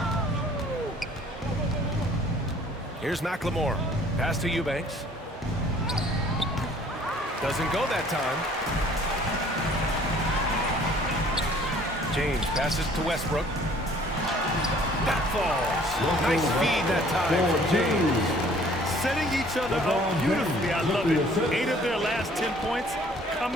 Here's McLemore. Pass to Eubanks. Doesn't go that time. James passes to Westbrook. That falls. Nice feed that time from James. Setting each other up beautifully. I love it. 8 of their last 10 points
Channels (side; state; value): both; normal; correlation 0.55